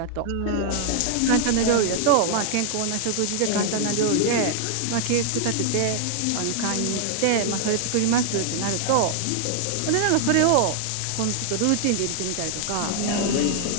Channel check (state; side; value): different; both; correlation 0.00